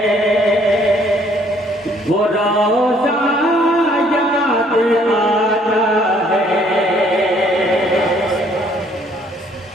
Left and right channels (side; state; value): both; normal; correlation 0.63